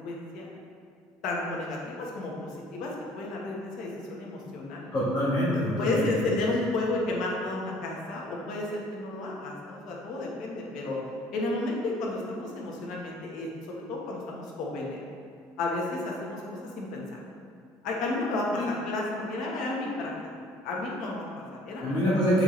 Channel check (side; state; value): both; normal; correlation 0.55